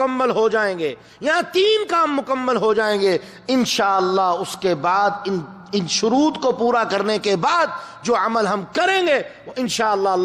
ہو جائیں گے یا 3 کام مکمل ہو جائیں گے، انشاءاللہ اس کے بعد ان شروط کو پورا کرنے کے بعد جو عمل ہم کریں گے وہ انشاءاللہ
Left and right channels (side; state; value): both; identical; correlation 1.00